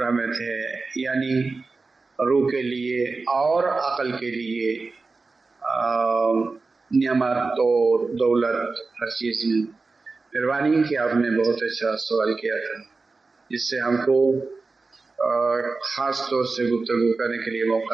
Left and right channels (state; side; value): quieter; left; 3.9 dB